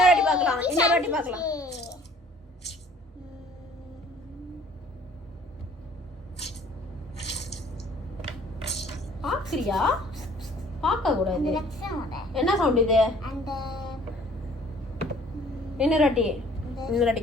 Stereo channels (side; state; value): both; normal; correlation 0.55